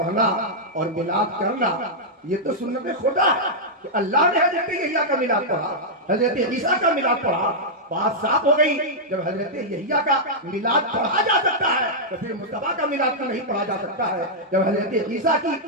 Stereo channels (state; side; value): normal; both; correlation -0.07